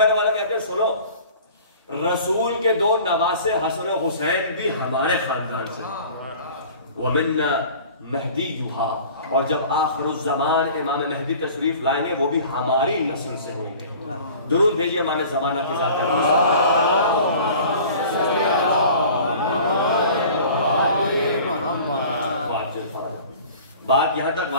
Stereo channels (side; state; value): both; inverted; correlation -0.44